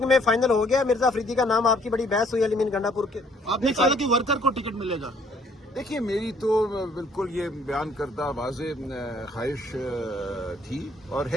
میں فائنل ہو گیا، مرزا افریدی کا نام، آپ کی بڑی بحث ہوئی علی گنڈا پور کے. آپ نے کہا کہ ورکر کو ٹکٹ ملے گا. دیکھیے میری تو بالکل یہ بیان کردہ واضح خواہش تھی اور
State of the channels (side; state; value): both; normal; correlation 0.62